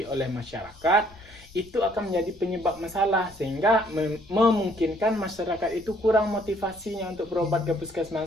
oleh masyarakat, itu akan menjadi penyebab masalah sehingga memungkinkan masyarakat itu kurang motivasinya untuk berobat ke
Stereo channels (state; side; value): noise; left; rumble, 24 dB below the sound